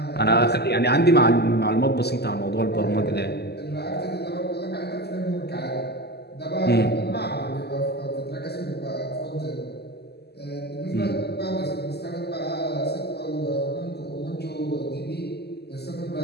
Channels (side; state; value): right; late; 0.47 ms